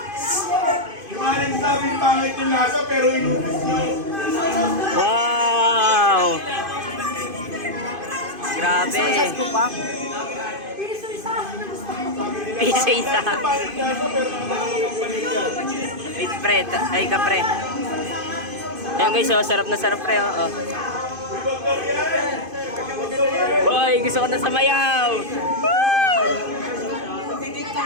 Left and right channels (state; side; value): late; left; 2.5 ms